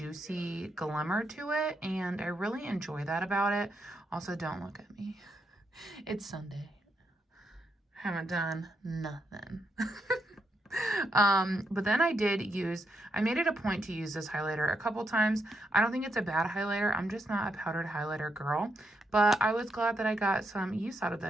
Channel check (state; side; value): normal; both; correlation 0.80